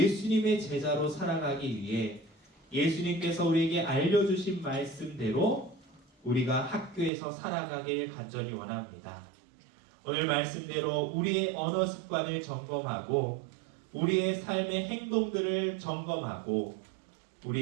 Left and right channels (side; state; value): left; drops out; at 7.1 s